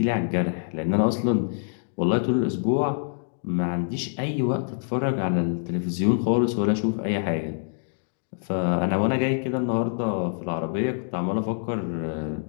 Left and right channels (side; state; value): right; silent; digital silence